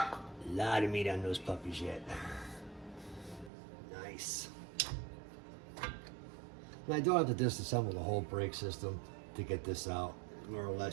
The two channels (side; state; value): left; drops out; at 3.5 s